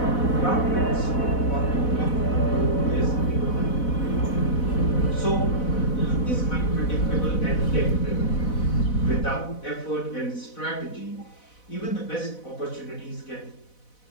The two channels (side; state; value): right; late; 4.1 ms